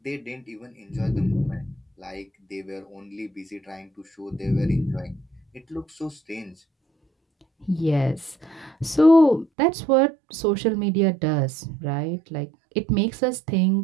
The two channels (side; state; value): left; drops out; at 9.5 s